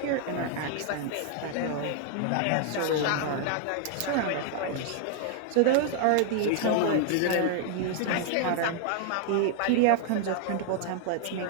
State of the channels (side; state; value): both; different; correlation 0.00